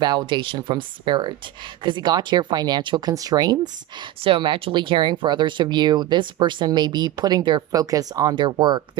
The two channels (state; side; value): quieter; left; 14.4 dB